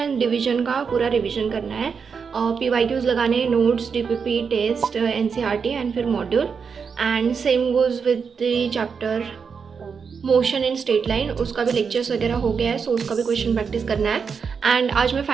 division का पूरा revision करना है. PYQs लगाने, notes, DPP, test, NCERT and फिर module. And same goes with the chapter motion in straight line. उसका भी लेक्चर्स वगैरह हो गया है, सो उसका भी क्वेश्चन प्रैक्टिस करना है. एंड आज मैं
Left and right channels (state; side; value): quieter; left; 6.0 dB